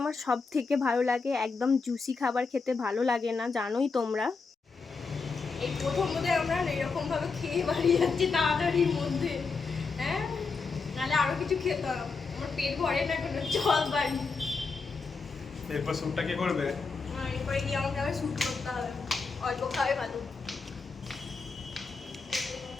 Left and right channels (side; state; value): right; quieter; 4.6 dB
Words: আমার সব থেকে ভালো লাগে, একদম জুসি খাবার খেতে ভালো লাগে না, জানোই তোমরা। এই প্রথম বোধহয় আমরা এরকমভাবে খেয়ে বাড়ি যাচ্ছি তাড়াতাড়ির মধ্যে, হ্যাঁ, নাহলে আরো কিছু খেতাম, আমার পেট ভরে না কোনো, চল বাড়ি। এরপর শ্যুটটা কে করবে? এরপরে গিয়ে আমাকে আবার শ্যুট করতে হবে, অল্প খাবে ভালো।